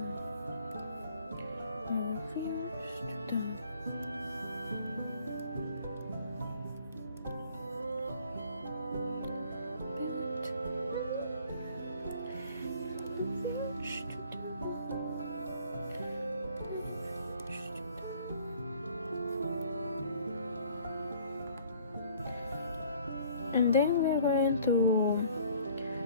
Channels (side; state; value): both; inverted; correlation -0.55